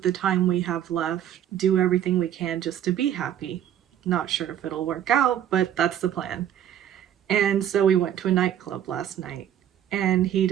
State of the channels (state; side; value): quieter; left; 10.4 dB